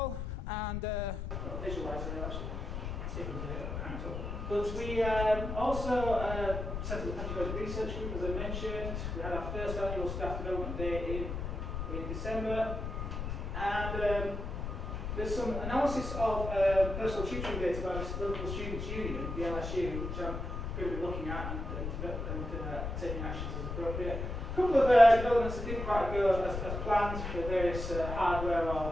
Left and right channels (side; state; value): left; noise; rumble, 5 dB below the sound